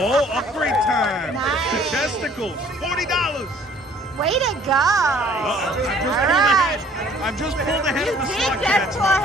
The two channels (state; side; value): normal; both; correlation 0.56